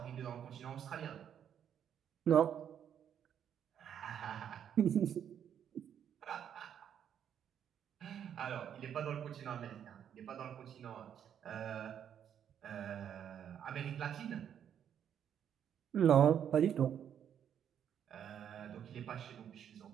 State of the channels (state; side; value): quieter; left; 9.0 dB